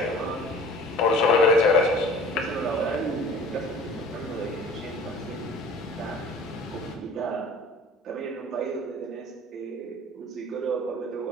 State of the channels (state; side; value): normal; both; correlation 0.45